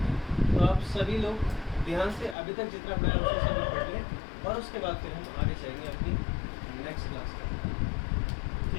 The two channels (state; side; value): drops out; right; at 2.4 s